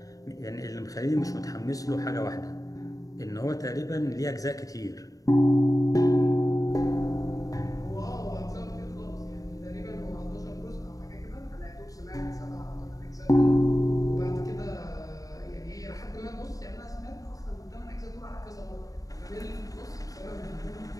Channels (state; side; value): late; right; 0.17 ms